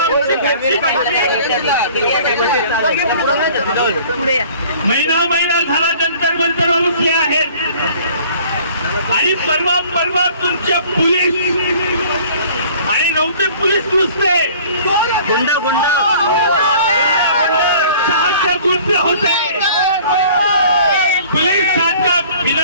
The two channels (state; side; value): inverted; both; correlation -0.50